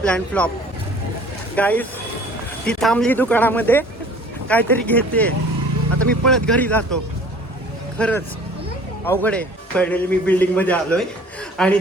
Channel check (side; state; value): both; normal; correlation 0.49